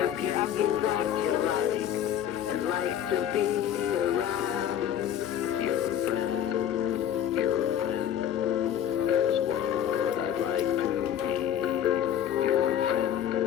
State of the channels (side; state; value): right; quieter; 10.2 dB